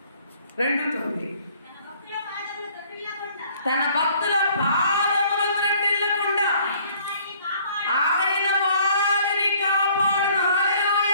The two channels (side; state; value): both; inverted; correlation -0.58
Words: 2:9. తన భక్తుల పాదములు త్రొట్టిల్లకుండా ఆయన వారిని కాపాడును.